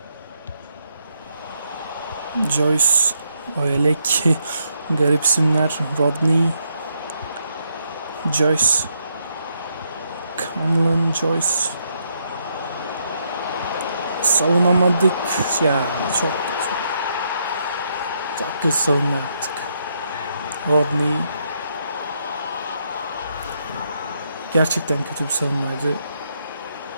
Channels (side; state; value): both; inverted; correlation -0.77